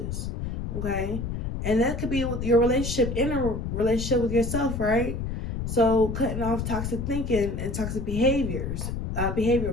Okay. And that could be with your relationship, in a relationship with yourself, right? So cutting off toxic thinking and toxic behaviors,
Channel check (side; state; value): left; noise; rumble, 4 dB below the sound